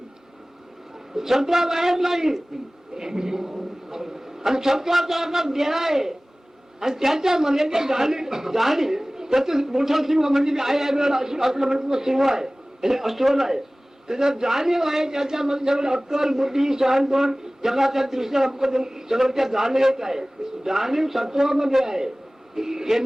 सत्वा बाहेर नाही आणि सत्वाचा अर्थ देह आहे आणि त्याच्यामध्ये ते जाणीव त्याचं मोठा सिंह म्हणजे मी आहे असलं म्हणजे सिंह आहे अस्वल आहे त्याच्यात जाणीव आहे त्याच्यामध्ये सगळं अक्कल बुद्धी शहाणपण जगाच्या दृष्टीने सगळं त्या जाणीवेत आहे. जाणीव सत्वामध्ये आहे.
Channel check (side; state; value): both; normal; correlation 0.98